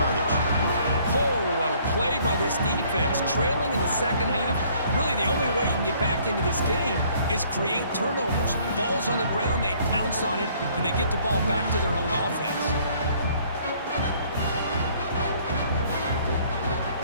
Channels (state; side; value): inverted; both; correlation -0.60